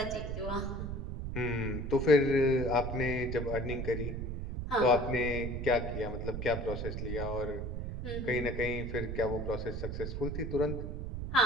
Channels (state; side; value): noise; right; rumble, 4 dB below the sound